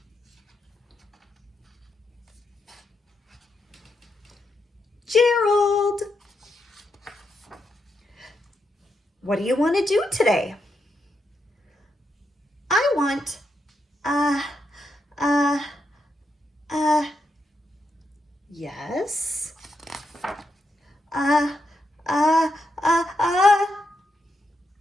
Gerald, what do you want to do today? I want, yes,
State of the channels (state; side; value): normal; both; correlation 0.82